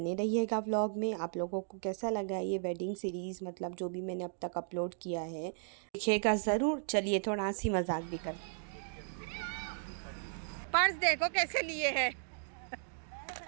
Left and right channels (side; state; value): left; silent; digital silence